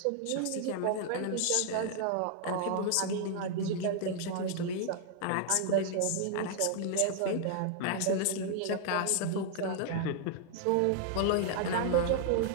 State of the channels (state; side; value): different; both; correlation 0.00